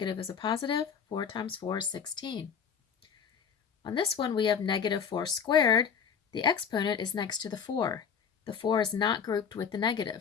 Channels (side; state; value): right; quieter; 7.0 dB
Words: is a positive. 4 times 4 is 16. On this one, we have -4 squared. The exponent is next to the 4. The 4 is not grouped with the